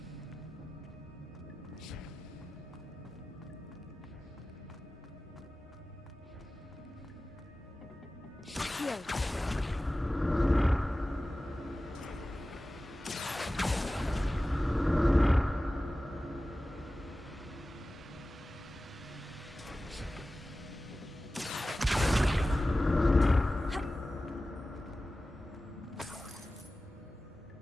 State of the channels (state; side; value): normal; both; correlation 0.96